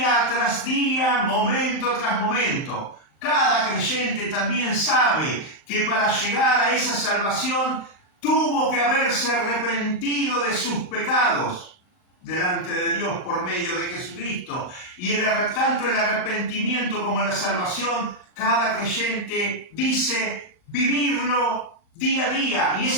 tras día, momento tras momento. Cada creyente también sabe que para llegar a esa salvación tuvo que haberse arrepentido de sus pecados. delante de Dios por medio de Jesucristo. Y tanto el arrepentimiento como la salvación, cada creyente dice vivirlo día a día. Y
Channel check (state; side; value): late; right; 39 ms